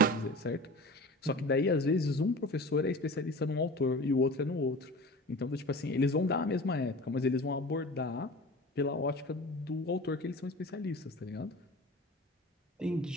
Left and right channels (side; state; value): both; normal; correlation 0.37